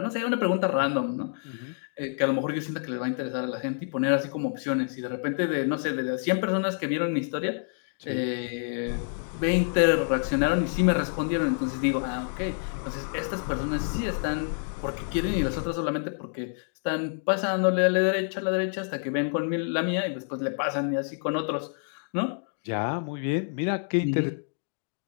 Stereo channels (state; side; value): silent; right; digital silence